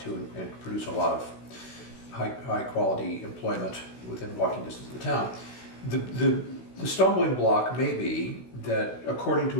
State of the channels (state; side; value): late; right; 16 ms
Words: to and produce a lot of high quality employment within walking distance of the town. The stumbling block may be that, according